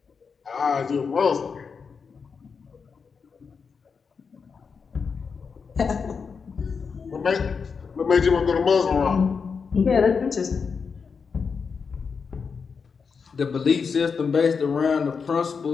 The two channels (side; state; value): right; quieter; 5.6 dB